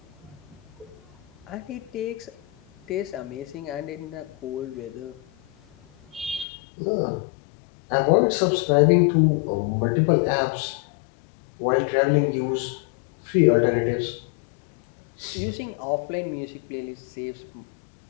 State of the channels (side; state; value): right; drops out; at 6.5 s